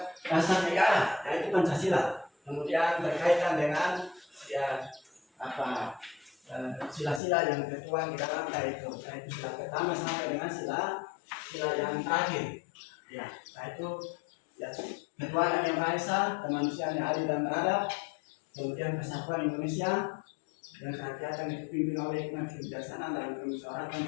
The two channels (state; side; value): drops out; right; at 7.2 s